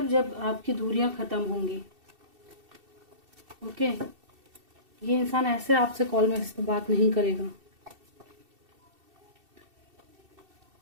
जब आपकी दूरियां ख़त्म होंगी। ओके, ये इंसान ऐसे आपसे कॉल मैसेज पर बात नहीं करेगा।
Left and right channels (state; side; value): late; left; 2.7 ms